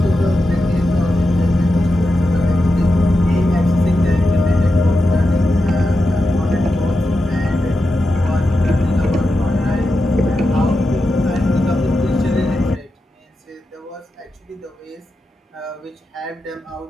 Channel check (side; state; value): both; normal; correlation 0.89